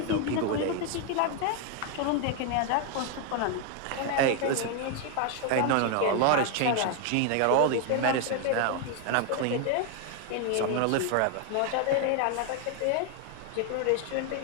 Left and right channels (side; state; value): both; different; correlation 0.01